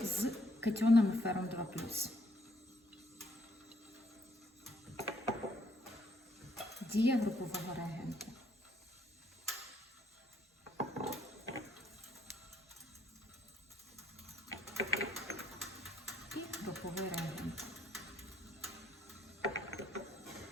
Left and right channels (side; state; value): both; normal; correlation 0.69